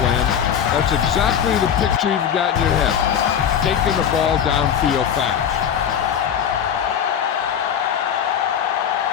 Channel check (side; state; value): right; quieter; 8.6 dB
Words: plan, that's exactly the picture you've got in your head. Taking the ball downfield fast.